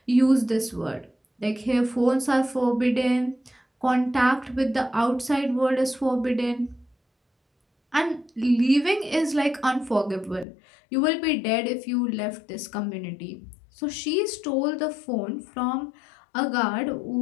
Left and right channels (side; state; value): right; drops out; at 10.5 s